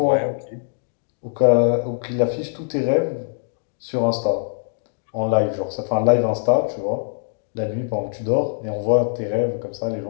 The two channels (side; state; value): right; silent; digital silence